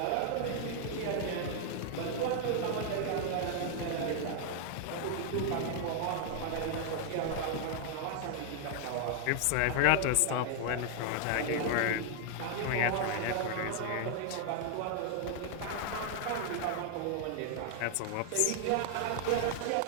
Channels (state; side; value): different; both; correlation 0.00